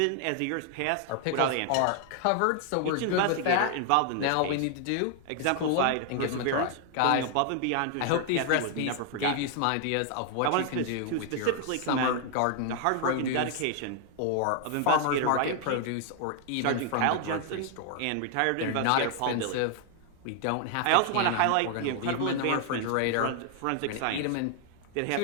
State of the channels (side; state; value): both; different; correlation 0.00